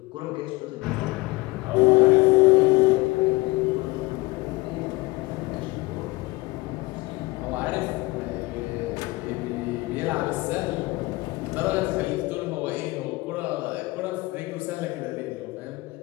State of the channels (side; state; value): right; quieter; 22.7 dB